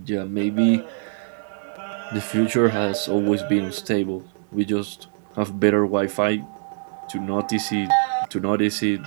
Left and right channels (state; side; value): silent; left; digital silence